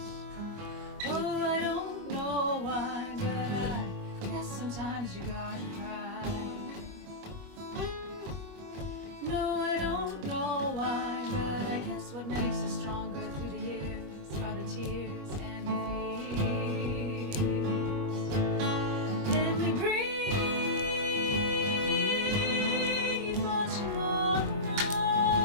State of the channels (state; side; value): late; left; 21 ms